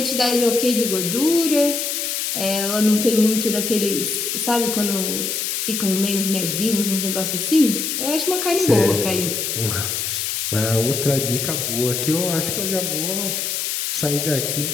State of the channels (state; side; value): noise; left; hiss, 1 dB below the sound